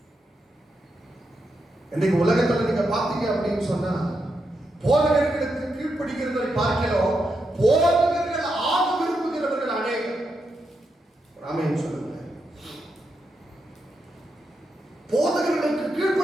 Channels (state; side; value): normal; both; correlation 0.84